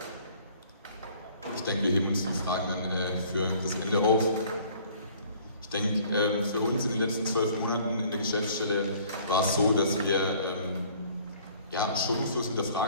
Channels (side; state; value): both; inverted; correlation -0.55